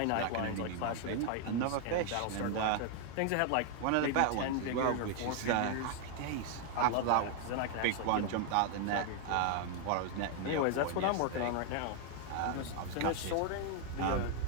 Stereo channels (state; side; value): different; both; correlation 0.00